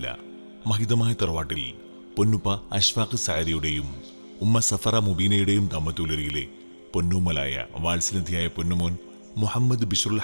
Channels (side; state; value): both; inverted; correlation -1.00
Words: മഹിതമായ തറവാട്ടിൽ പൊന്നുപ്പ അഷ്ഫാഖ് സഅദിയുടെയും ഉമ്മ സഫറ മുബീനയുടെയും ദമ്പതികളിലെ പൊന്നുമലായ വാത്സല്യധിയായ പൊന്നുമോൻ മുഹമ്മദ് ബിശ്റുൽ